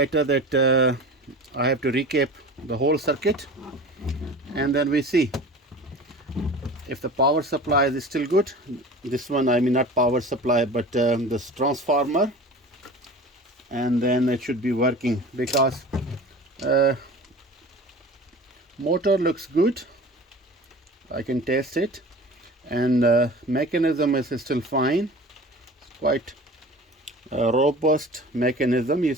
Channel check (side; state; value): both; normal; correlation 0.38